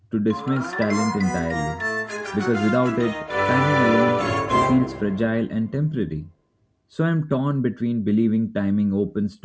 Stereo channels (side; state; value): both; identical; correlation 1.00